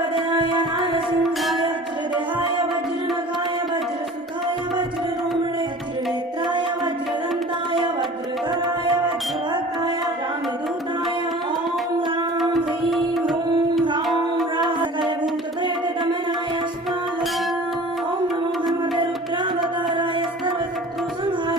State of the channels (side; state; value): both; normal; correlation 0.42